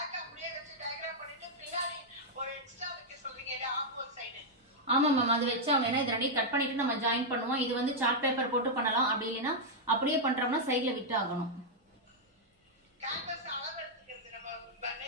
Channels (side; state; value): both; normal; correlation -0.04